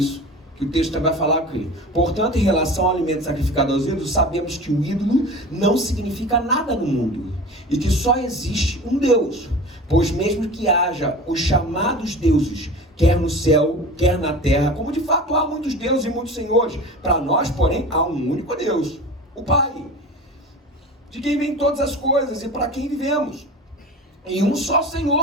que o texto vai falar aqui. Portanto, em relação ao alimento sacrificado aos ídolos, sabemos que o ídolo não significa nada no mundo e que só existe um Deus. Pois mesmo que haja os chamados deuses, quer no céu, quer na terra, como de fato há muitos deuses e muitos senhores, para nós, porém, há um único Deus, o Pai, de quem vêm todas as coisas e para quem vivemos, e um só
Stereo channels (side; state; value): both; normal; correlation 0.35